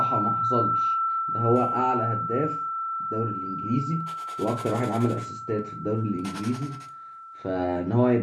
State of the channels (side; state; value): both; identical; correlation 1.00